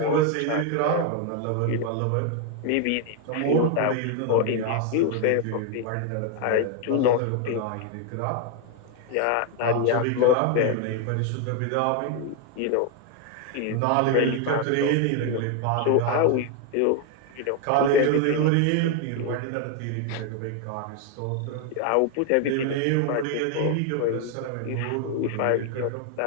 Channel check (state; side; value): different; both; correlation 0.01